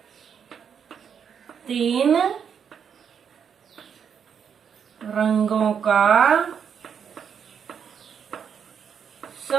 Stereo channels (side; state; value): left; quieter; 7.5 dB